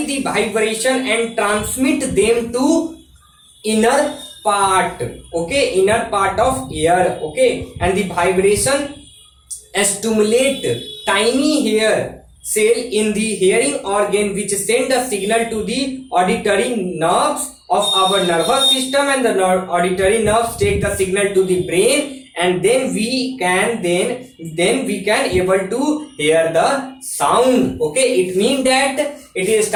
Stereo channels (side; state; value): both; identical; correlation 1.00